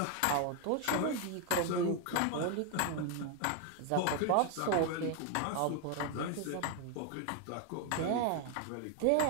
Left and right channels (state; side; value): different; both; correlation 0.01